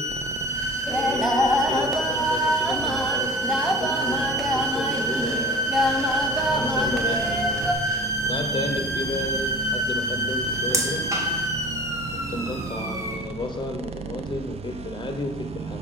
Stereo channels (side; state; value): both; normal; correlation 0.40